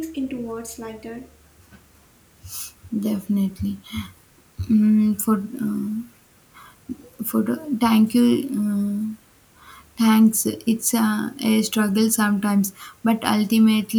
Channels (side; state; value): both; identical; correlation 1.00